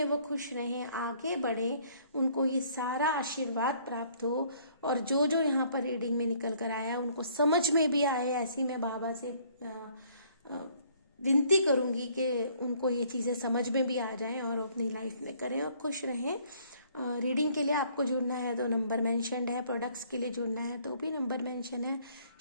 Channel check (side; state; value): both; inverted; correlation -0.61